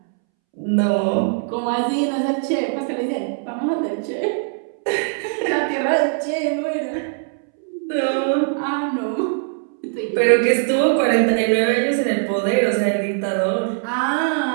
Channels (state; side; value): silent; left; 65 dB below the other